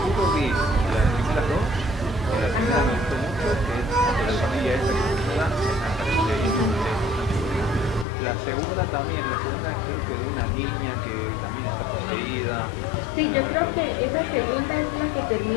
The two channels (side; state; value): right; drops out; at 8.1 s